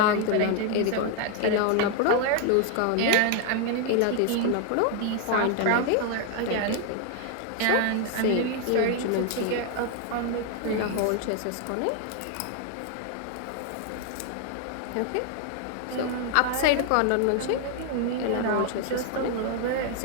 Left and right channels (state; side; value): different; both; correlation 0.00